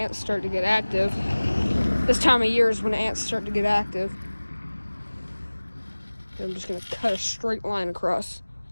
start to get active. This time of year is when ants start to get active. And I'm just gonna cut a straight line across.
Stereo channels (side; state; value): both; inverted; correlation -1.00